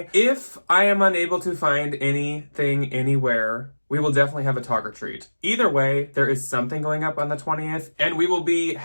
If I am unable to find anything anywhere, we will definitely have a talk or treat. Either way, there is something going up on the 20th, and we will be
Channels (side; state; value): both; inverted; correlation -1.00